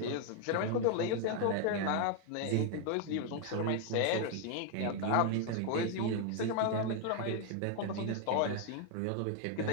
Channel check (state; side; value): different; both; correlation 0.01